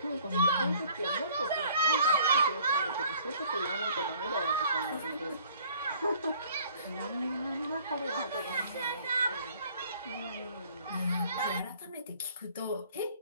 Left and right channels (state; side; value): inverted; both; correlation -0.56